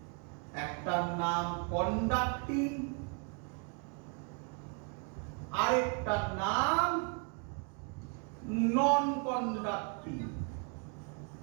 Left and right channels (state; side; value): quieter; left; 37.7 dB